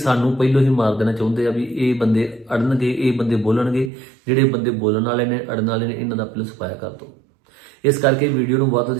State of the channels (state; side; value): drops out; left; at 3.9 s